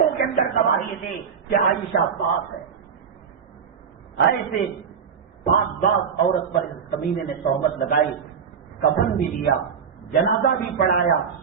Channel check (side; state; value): left; quieter; 6.9 dB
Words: کے اندر گواہی دی کہ عائشہ پاک ہے. ایسے پاک باز عورت پر اس کمینے نے تہمت لگائی، کفن بھی دیا، جنازہ بھی پڑھایا،